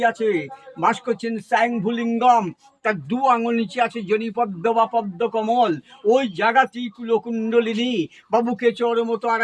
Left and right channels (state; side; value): identical; both; correlation 1.00